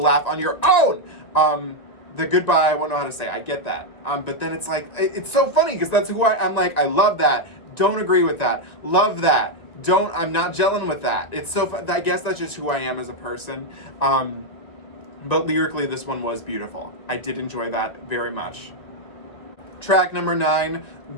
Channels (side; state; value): right; late; 1.9 ms